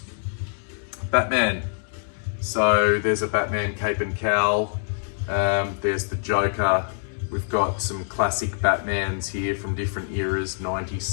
Batman. So there's a Batman cape and cowl. There's the Joker. We've got some classic Batmans here from different eras, 90s,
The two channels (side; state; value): right; silent; digital silence